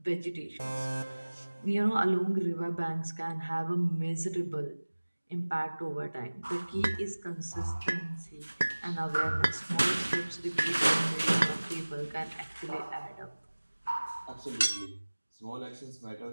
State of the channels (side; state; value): both; inverted; correlation -1.00